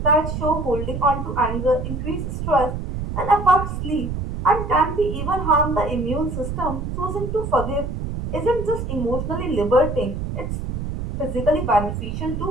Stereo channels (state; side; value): noise; right; rumble, 4 dB below the sound